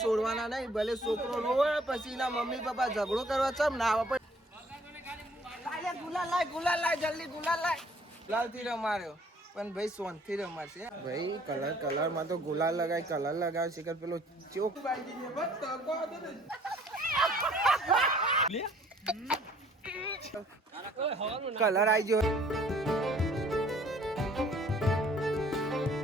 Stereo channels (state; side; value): normal; both; correlation 0.58